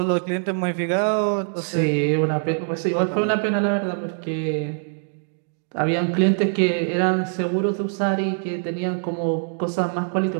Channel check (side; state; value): left; silent; digital silence